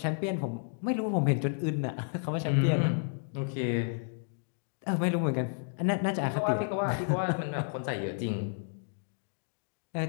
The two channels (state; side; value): silent; right; digital silence